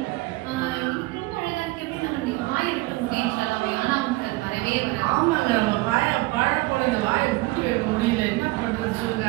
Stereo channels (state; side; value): quieter; left; 21.6 dB